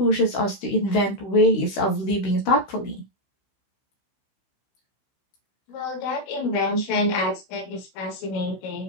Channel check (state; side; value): late; right; 16 ms